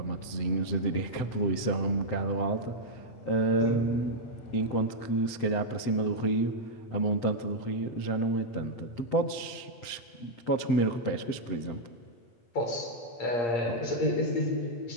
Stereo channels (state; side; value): late; right; 7.8 ms